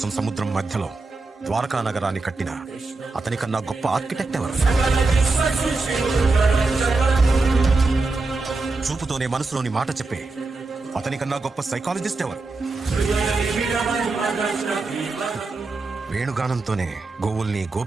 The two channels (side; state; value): left; quieter; 3.5 dB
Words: సముద్రం మధ్యలో ద్వారకా నగరాన్ని కట్టిన అతనికన్నా గొప్ప ఆర్కిటెక్ట్ ఎవరు? చూపుతోనే మనసులోని మాట చెప్పే అతనికన్నా గొప్ప సైకాలజిస్ట్ ఎవరు? వేణుగానంతోనే గోవుల్ని